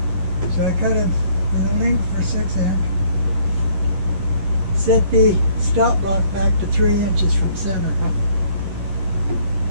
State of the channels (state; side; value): late; left; 11 ms